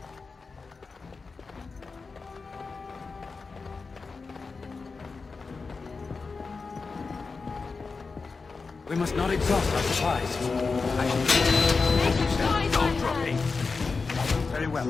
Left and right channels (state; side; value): quieter; right; 4.4 dB